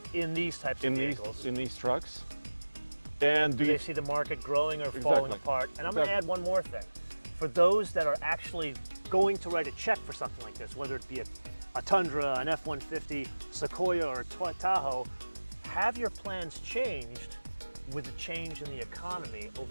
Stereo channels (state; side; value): inverted; both; correlation -1.00